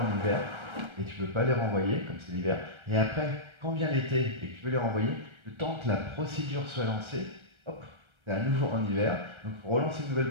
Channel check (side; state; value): left; late; 1.3 ms